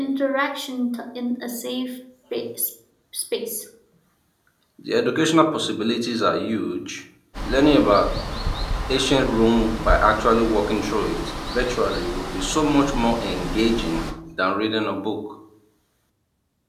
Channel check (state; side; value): identical; both; correlation 1.00